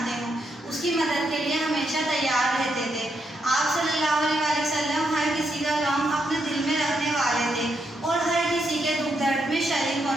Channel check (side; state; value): both; normal; correlation 0.80